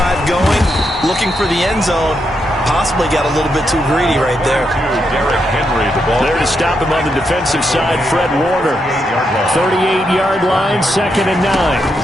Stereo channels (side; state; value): both; normal; correlation 0.81